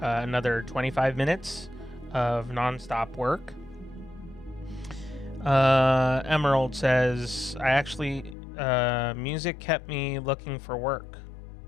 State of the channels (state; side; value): drops out; right; at 8.3 s